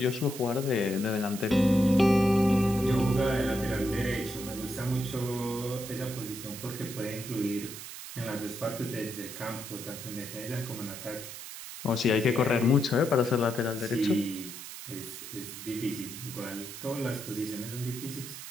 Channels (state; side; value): noise; right; hiss, 11 dB below the sound